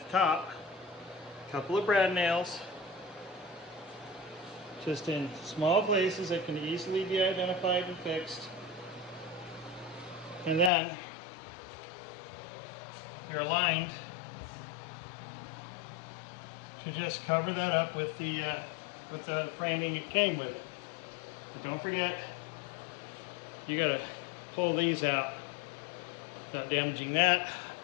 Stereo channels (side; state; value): right; drops out; at 10.7 s